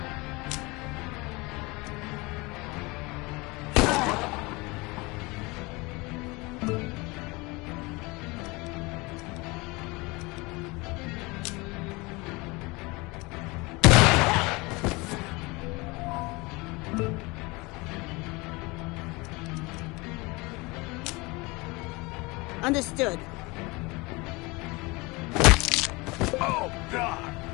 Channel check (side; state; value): right; quieter; 24.8 dB